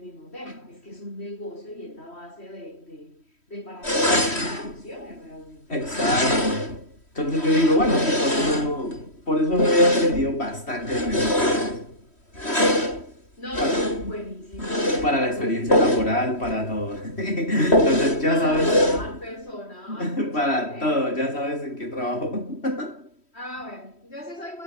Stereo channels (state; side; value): late; right; 3.1 ms